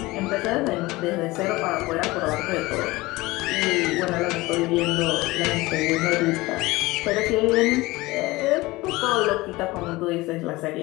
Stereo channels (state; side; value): quieter; right; 20.6 dB